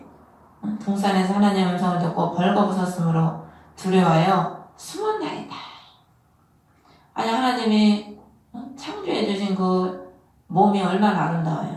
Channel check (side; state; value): both; identical; correlation 1.00